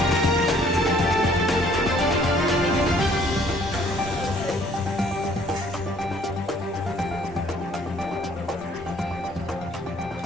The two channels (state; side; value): normal; both; correlation 0.60